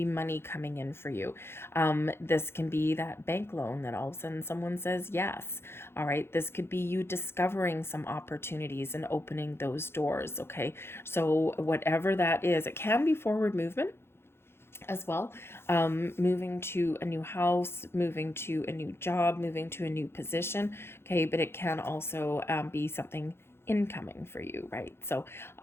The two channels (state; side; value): late; right; 0.12 ms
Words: money coming in for you. This can be that bank loan that all of a sudden someone says yes. All right. This could be you discovering some opportunities and opening those doors. Okay. So whatever that is, it can be forward movement as well. Moving to a new house, moving to a new job, moving to a new position. Okay. But it can also be something incoming for you, right? So